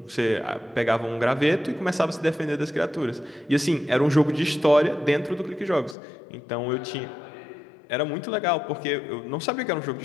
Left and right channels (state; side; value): drops out; right; at 6.0 s